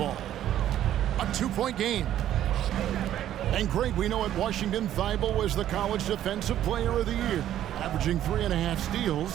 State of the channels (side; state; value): left; quieter; 11.8 dB